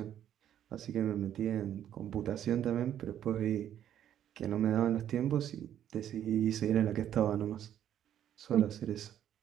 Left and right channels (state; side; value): quieter; left; 10.5 dB